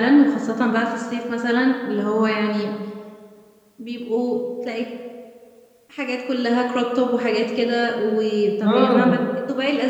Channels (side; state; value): both; identical; correlation 1.00